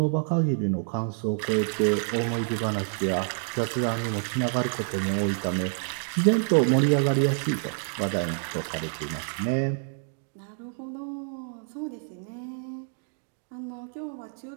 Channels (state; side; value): silent; left; 59 dB below the other